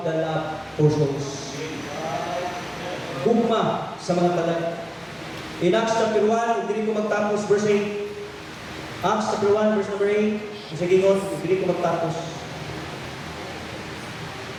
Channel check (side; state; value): both; identical; correlation 1.00